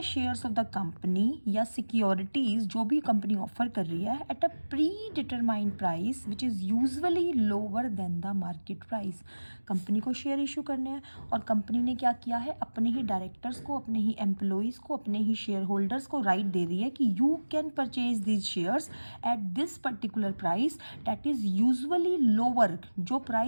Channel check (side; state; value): both; inverted; correlation -1.00